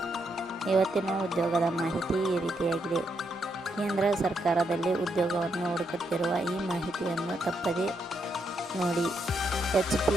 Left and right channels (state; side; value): normal; both; correlation 0.79